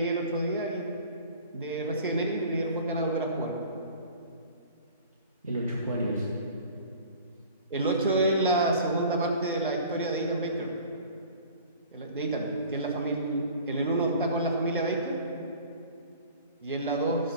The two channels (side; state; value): both; inverted; correlation -0.45